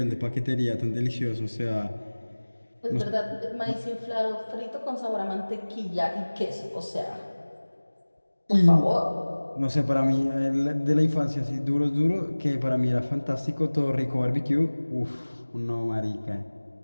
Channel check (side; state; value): both; inverted; correlation -1.00